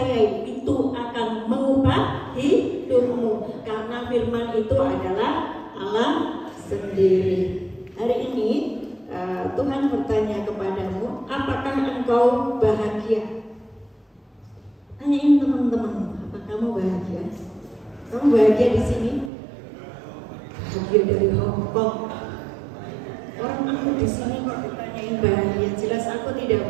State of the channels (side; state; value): left; drops out; at 19.3 s